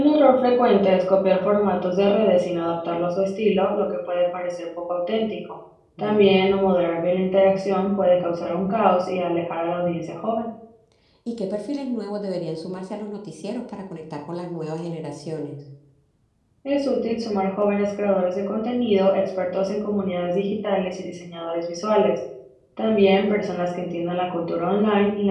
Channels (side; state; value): both; identical; correlation 1.00